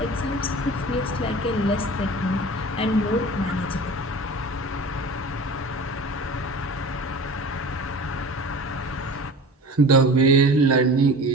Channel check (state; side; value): normal; both; correlation 0.38